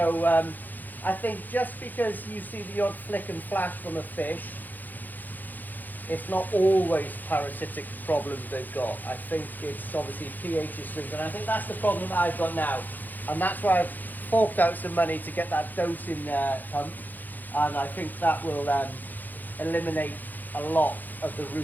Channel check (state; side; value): late; right; 0.085 ms